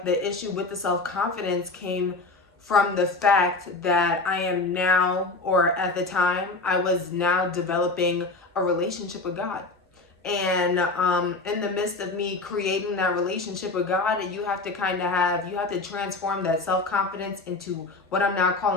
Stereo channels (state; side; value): quieter; right; 3.5 dB